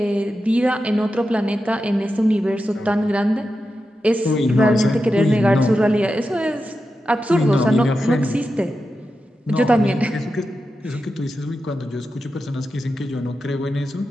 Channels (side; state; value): both; normal; correlation 0.90